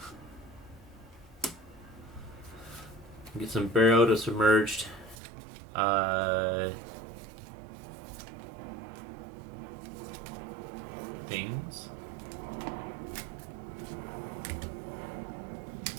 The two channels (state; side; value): drops out; left; at 5.2 s